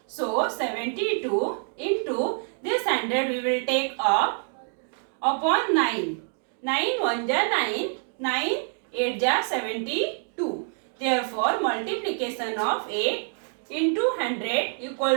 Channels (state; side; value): silent; left; 58 dB below the other